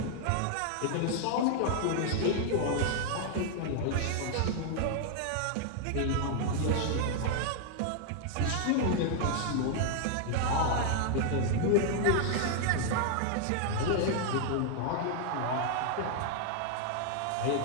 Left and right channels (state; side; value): different; both; correlation 0.00